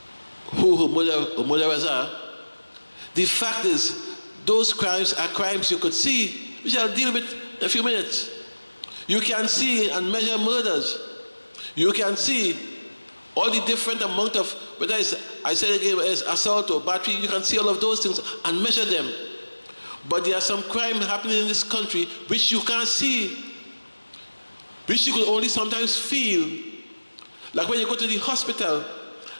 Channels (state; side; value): inverted; both; correlation -1.00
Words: who murderers are. The fact is, those crimes are crimes you could see, which I'll deal with in a few minutes. You can see and measure murders. You can see all the different amount of, whether it's, I said again, it's assault or battery, you can see all of those things and measure them. But there are some crime happening in this country which you can't see, which you could only sometimes feel. Like when you go to the hospital